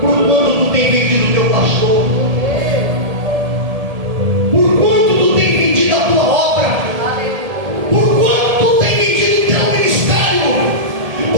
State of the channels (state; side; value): late; left; 1.7 ms